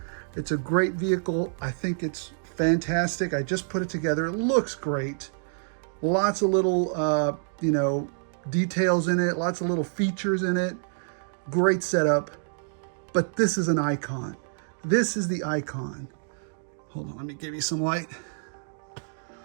It's a great vehicle. I think it's fantastic. I just put it together. It looks great. Lots of little, you know, details in it. Lots of little features in it. Great setup. But this is an icon. This is the icon. Hold on, let me give you some light.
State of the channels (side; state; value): left; silent; digital silence